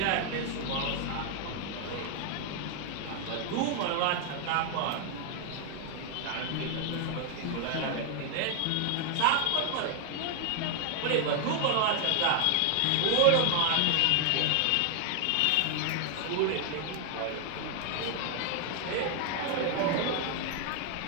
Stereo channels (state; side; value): different; both; correlation 0.00